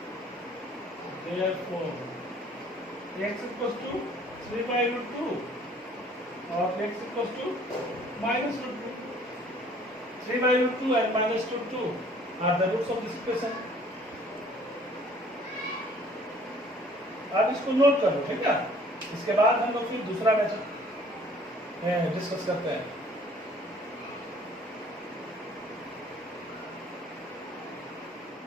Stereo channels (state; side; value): normal; both; correlation 0.55